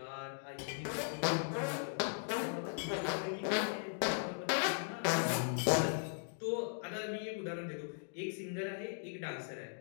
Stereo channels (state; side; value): silent; right; digital silence